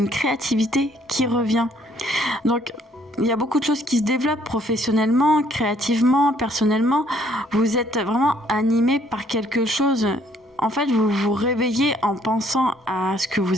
créativité qui revient. Donc, il y a beaucoup de choses qui se développent professionnellement, créativement, personnellement. Vous êtes vraiment animé par quelque chose. En fait, vous vous réveillez en pensant à ce que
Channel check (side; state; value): both; normal; correlation 0.64